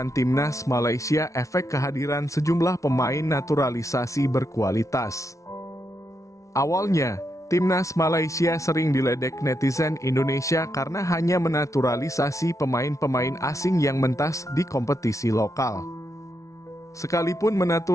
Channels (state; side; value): late; right; 0.15 ms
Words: timnas Malaysia efek kehadiran sejumlah pemain naturalisasi berkualitas. Awalnya, Timnas Malaysia sering diledek netizen Indonesia karena hanya menaturalisasi pemain-pemain asing yang mentas di kompetisi lokal. Sekalipun